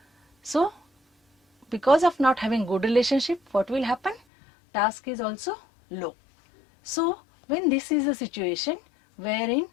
So because of not having good relationship, what will happen? Task is also low. So when this is a situation wherein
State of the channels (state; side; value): drops out; right; at 4.2 s